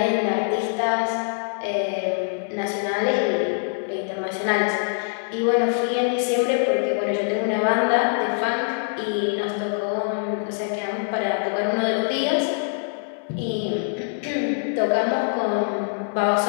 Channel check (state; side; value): silent; right; 62 dB below the other